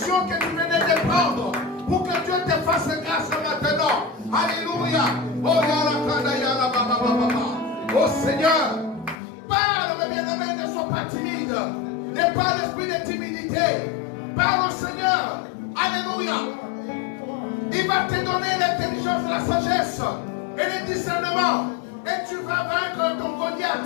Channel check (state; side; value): drops out; right; at 9.2 s